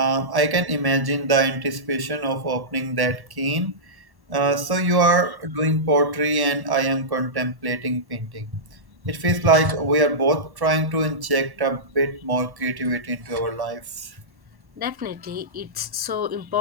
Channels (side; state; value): left; late; 1.1 ms